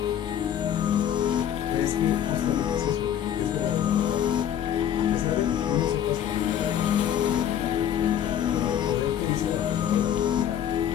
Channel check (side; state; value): right; quieter; 10.0 dB